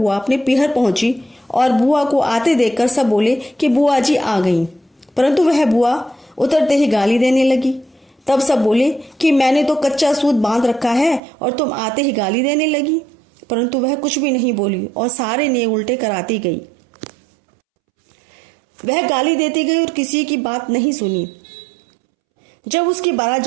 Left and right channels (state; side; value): drops out; left; at 11.2 s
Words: अपने पीहर पहुंची और बुआ को आते देखकर सब बोले कि बुआ जी आ गई, परंतु वह बुआ उतरते ही गाली देने लगी। तब सब बोले कि मैंने तो कच्चा सूत बांध रखा है और तुम आते ही गाली देने लगी, परंतु वह कुछ भी नहीं बोली और सारे नियम उल्टे कराती गई। वह गाली देती गई और किसी की बात नहीं सुनी। जब उसकी बारात